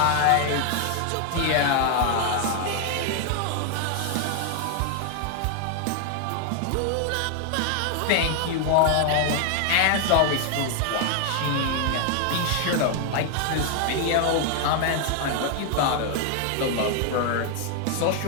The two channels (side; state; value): both; different; correlation 0.00